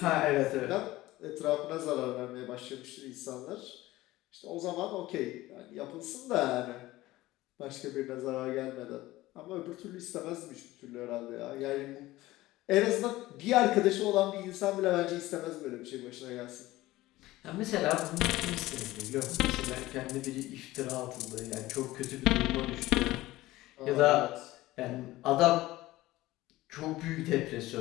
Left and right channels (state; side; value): quieter; right; 17.6 dB